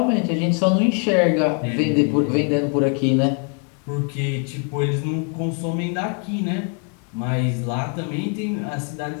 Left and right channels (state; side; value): quieter; right; 38.2 dB